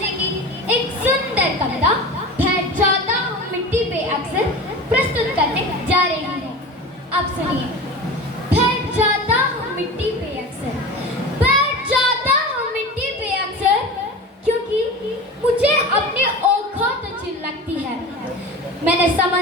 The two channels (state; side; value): normal; both; correlation 0.32